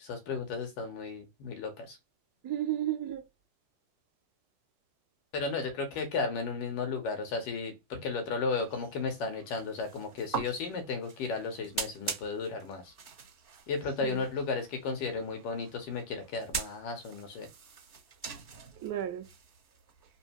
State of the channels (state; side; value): late; right; 2.7 ms